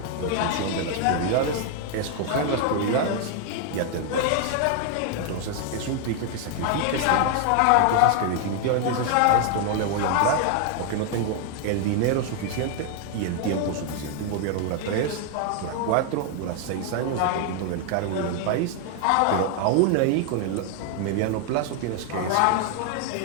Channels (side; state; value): both; different; correlation 0.00